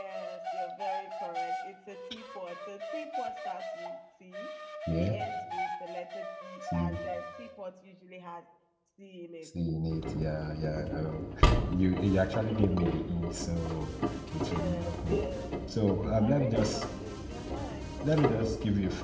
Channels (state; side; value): identical; both; correlation 1.00